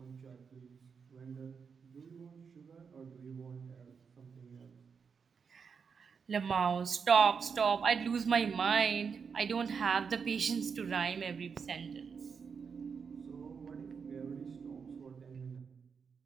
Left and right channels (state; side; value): quieter; left; 6.0 dB